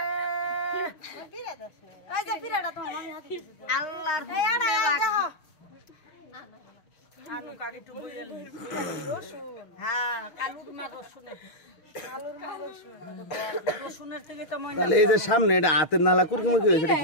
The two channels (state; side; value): late; right; 6.3 ms